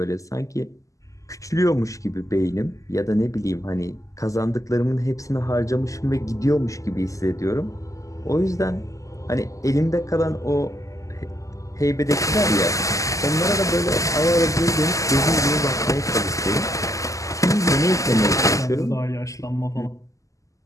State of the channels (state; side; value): late; right; 0.16 ms